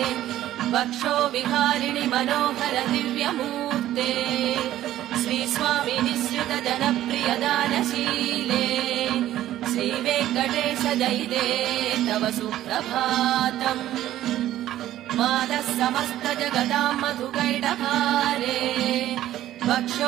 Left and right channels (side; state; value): left; quieter; 13.3 dB